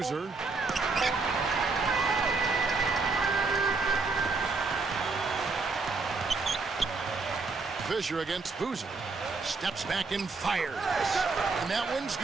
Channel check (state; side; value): quieter; left; 4.1 dB